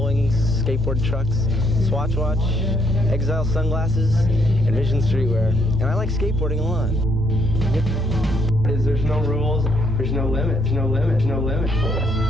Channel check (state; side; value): normal; both; correlation 0.72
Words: Skateboard Trucks, Swatch Watch, Exile Sunglasses, and Vision Streetwear. And I like skateboarding a lot. There's no rules, there's no limits, no limits, no limits. He's